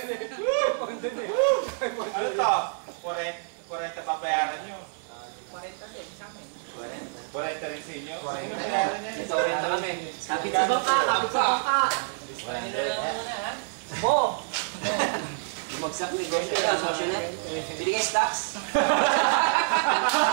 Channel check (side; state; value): left; silent; digital silence